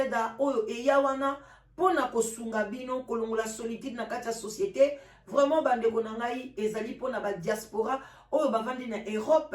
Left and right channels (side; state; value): both; identical; correlation 1.00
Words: oyo eyawana pona kosunga bino kolongola solitude na kati ya société. Vraiment bandeko na ngai ezali pona ba diaspora oyo bavandi na Europe,